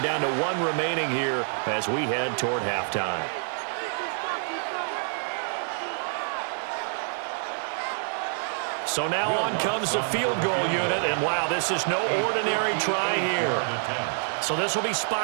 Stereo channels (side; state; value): left; silent; 58 dB below the other